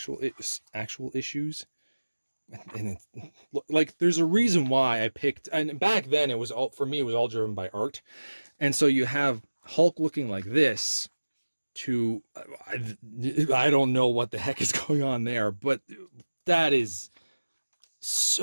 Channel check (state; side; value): inverted; both; correlation -1.00